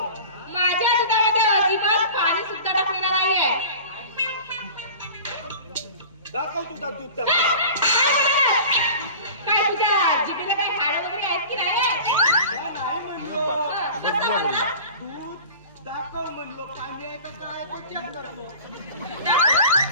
माझ्या दुधामध्ये अजिबात पाणी सुद्धा टाकलेलं नाही आहे. दाखव तुझा दूध काय तुझ्या जिभेला काय हाड वगैरे आहेत की नाही? नाही म्हणलो. कसं म्हणला? दूध दाखव म्हणलो. पाणी आहे का काय ते चेक करतो.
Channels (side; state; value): both; inverted; correlation -0.38